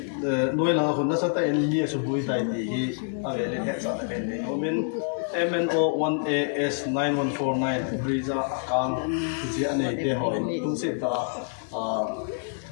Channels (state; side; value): silent; right; digital silence